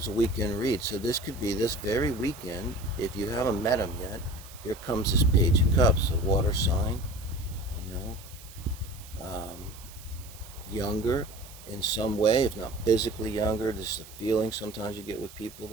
a weekend read. So this could be this very weekend. If you haven't met him yet, here comes this Page of Cups, a water sign, younger in some way, if not physically younger. This is a feeling sometimes you get with people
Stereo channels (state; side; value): noise; right; hiss, 19 dB below the sound